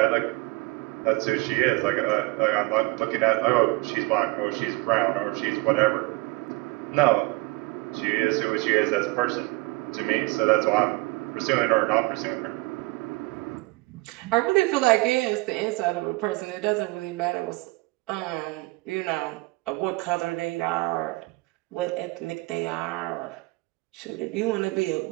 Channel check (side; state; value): left; quieter; 23.9 dB